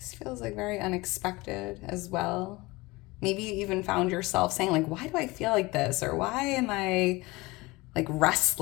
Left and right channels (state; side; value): quieter; right; 22.3 dB